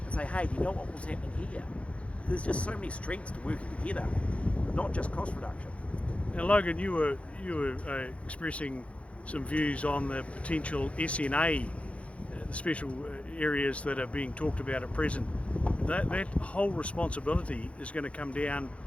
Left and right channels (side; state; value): right; late; 0.063 ms